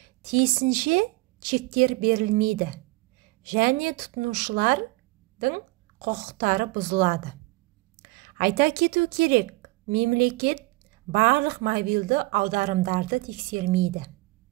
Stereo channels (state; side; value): quieter; left; 22.4 dB